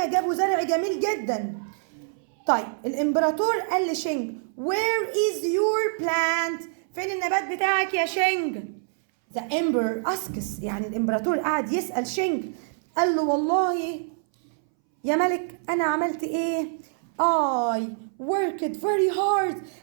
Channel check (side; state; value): left; silent; 61 dB below the other